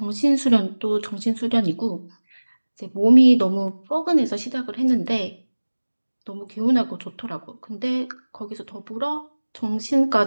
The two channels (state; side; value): inverted; both; correlation -1.00